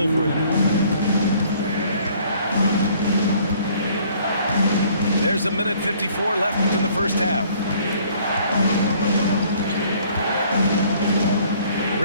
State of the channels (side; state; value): both; inverted; correlation -0.58